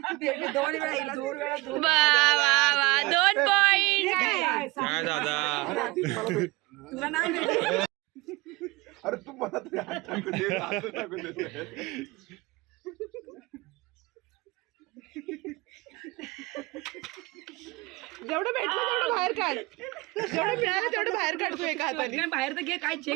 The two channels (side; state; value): left; quieter; 23.2 dB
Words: वा वा वा, 2 पॉइंट. तुला नाही भेटली. अरे तू मला तरी हात टाकू दे, हात टाकू दे. जेवढं भेटलं तेवढं बाहेर काढ, जेवढं मिळालं तेवढं बाहेर काढतो एका हाताने. बाहेर तर घे, काय